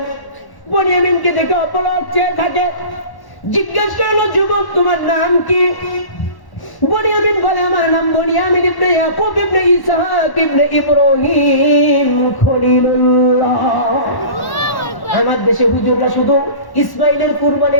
বনিয়ামিনকে দেখে অপলক চেয়ে থাকে। জিজ্ঞেস করলো, যুবক তোমার নাম কি? বনিয়ামিন বলে, আমার নাম বনিয়ামিন ইবনে ইয়াকুব ইবনে ইসহাক ইবনে ইব্রাহিম খলিলুল্লাহ। আমার দেশে হুজুররা শুধু ইসমাইলের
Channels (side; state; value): right; late; 1.1 ms